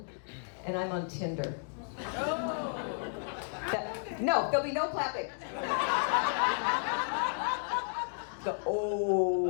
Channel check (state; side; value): silent; right; digital silence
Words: and I'm on Tinder. No, there'll be no clapping. The